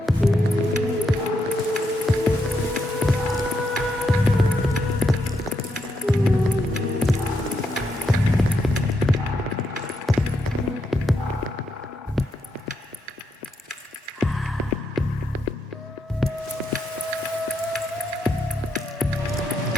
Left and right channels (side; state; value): both; normal; correlation 0.80